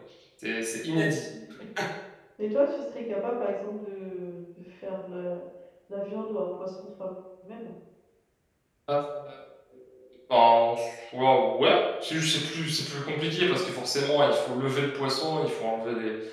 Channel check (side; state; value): both; identical; correlation 1.00